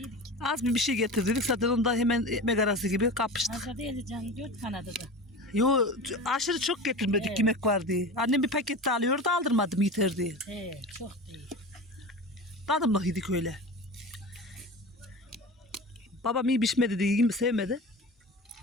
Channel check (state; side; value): normal; both; correlation 0.31